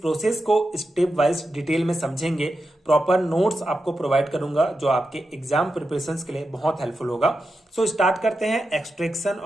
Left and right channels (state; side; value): normal; both; correlation 0.89